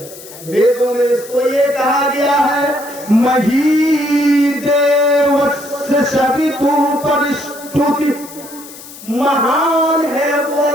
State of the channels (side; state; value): left; noise; hiss, 17 dB below the sound